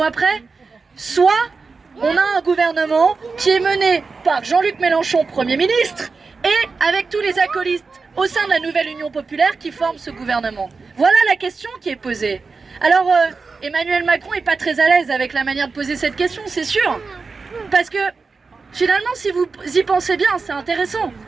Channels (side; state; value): left; quieter; 4.5 dB